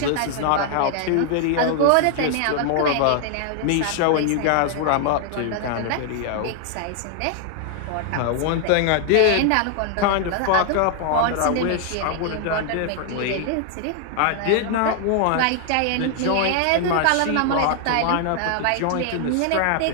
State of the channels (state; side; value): different; both; correlation 0.00